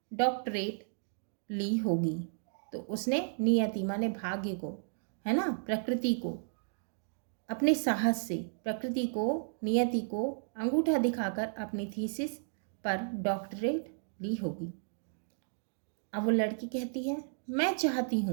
डॉक्टरेट ली होगी। तो उसने नियति माने भाग्य को, है ना, प्रकृति को, अपने साहस से प्रकृति को, नियति को अंगूठा दिखाकर अपनी थीसिस पर डॉक्टरेट ली होगी। अब वो लड़की कहती है, मैं चाहती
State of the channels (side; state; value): left; silent; digital silence